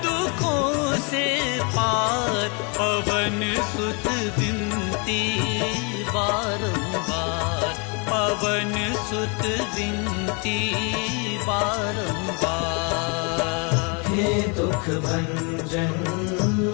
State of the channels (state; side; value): quieter; right; 33.8 dB